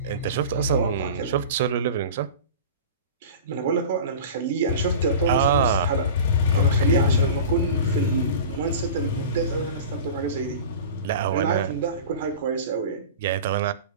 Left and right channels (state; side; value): inverted; both; correlation -0.35